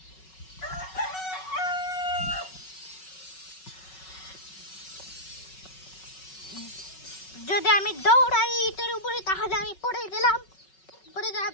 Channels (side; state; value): right; late; 5.4 ms